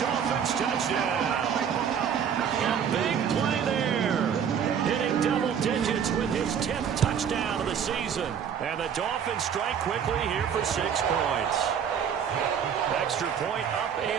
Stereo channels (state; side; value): quieter; left; 7.9 dB